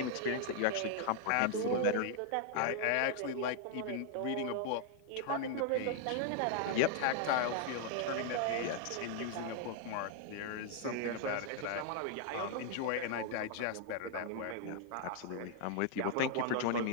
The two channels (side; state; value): both; different; correlation 0.00